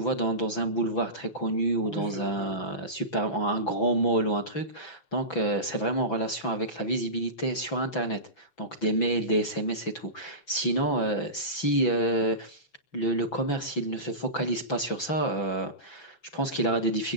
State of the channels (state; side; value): late; right; 6.0 ms